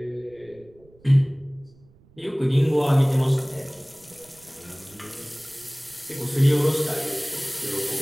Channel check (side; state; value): right; noise; rumble, 28 dB below the sound